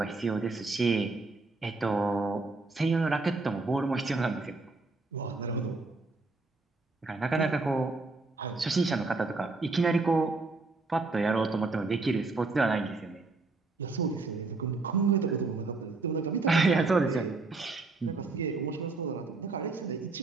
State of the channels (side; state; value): left; quieter; 3.6 dB